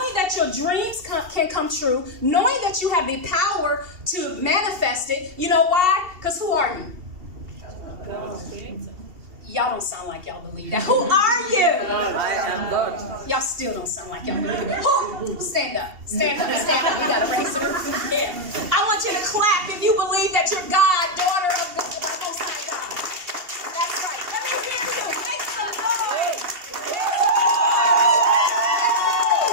that your dreams can come true, knowing that you have the power to manifest it. You know why? Because who are you? Y'all don't sound like y'all believe that. Who are you? Y'all still don't sound like y'all believe it. Who? Stand up. Stand up. Stand up. You got to raise it. Yeah. I want you to clap if you believe that you're God, daughter of the Most High God. That's right. Let me hear you. Make some noise.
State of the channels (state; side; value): late; left; 2.7 ms